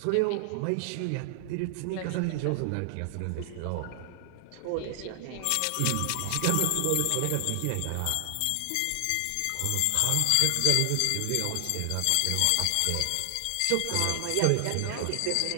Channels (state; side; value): different; both; correlation 0.00